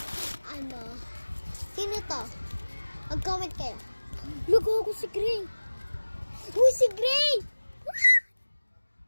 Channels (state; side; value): inverted; both; correlation -1.00